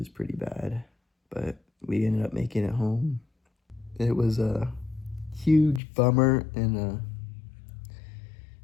pretty bad, but we ended up making it home. It was a huge bummer and a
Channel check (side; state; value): right; drops out; at 5.8 s